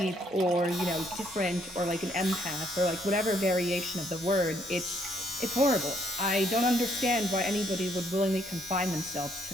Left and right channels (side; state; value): both; normal; correlation 0.69